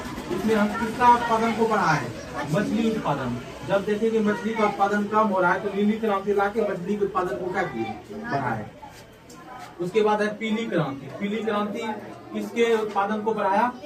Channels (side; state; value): both; identical; correlation 1.00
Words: इसमें हम किसका उत्पादन को बढ़ाए? मछली उत्पादन। जब देखे कि मछली का उत्पादन कम हो रहा है, तो नीली क्रांति लाके मछली के उत्पादन को क्या किए? बढ़ाए। उसके बाद है पीली क्रांति। पीली क्रांति किसके उत्पादन को बढ़ाया?